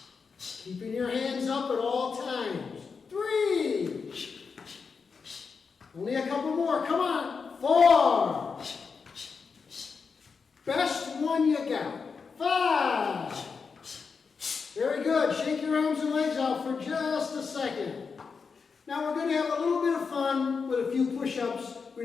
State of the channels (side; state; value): right; quieter; 5.3 dB